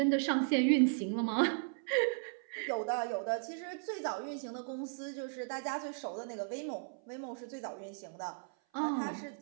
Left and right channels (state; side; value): silent; left; 54 dB below the other